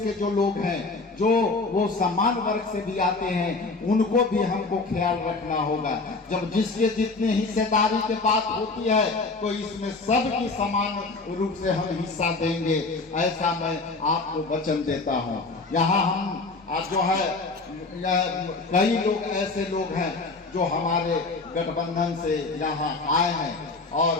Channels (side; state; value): right; quieter; 3.7 dB